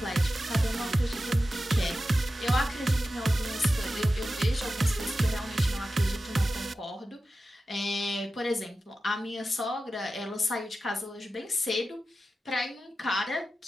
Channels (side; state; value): both; normal; correlation 0.93